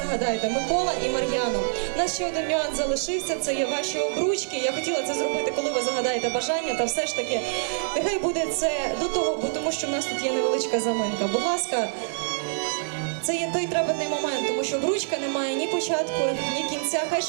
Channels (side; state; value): left; silent; digital silence